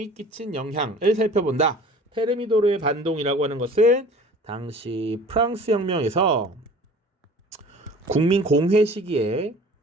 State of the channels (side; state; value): both; normal; correlation 0.46